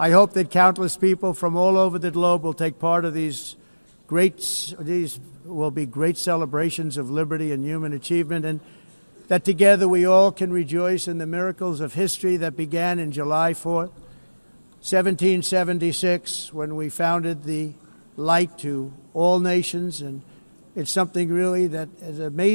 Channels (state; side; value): inverted; both; correlation -1.00